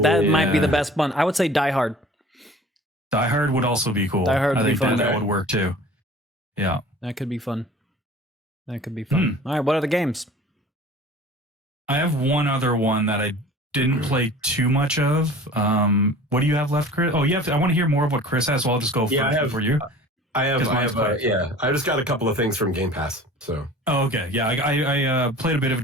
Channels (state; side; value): normal; both; correlation 0.44